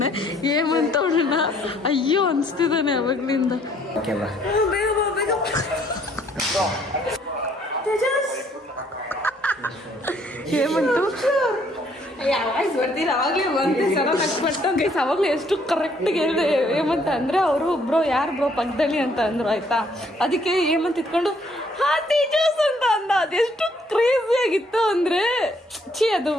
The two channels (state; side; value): normal; both; correlation 0.65